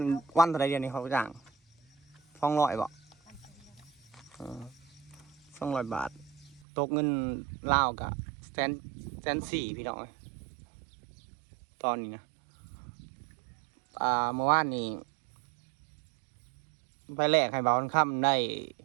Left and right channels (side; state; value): left; drops out; at 6.6 s